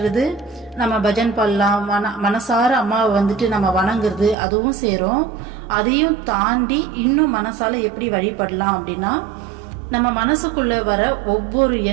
நம்ம பஜன் பண்ணலாம், மனசார அம்மாவை நம்ம வணங்குறது அதுவும் சேரும். அதையும் தாண்டி இன்னும் மனசால எப்படி வழிபடலாம் அப்படின்னா, நம்ம மனசுக்குள்ள வர ஒவ்வொரு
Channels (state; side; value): drops out; left; at 4.4 s